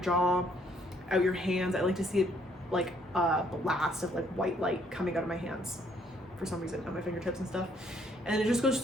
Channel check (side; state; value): both; normal; correlation 0.66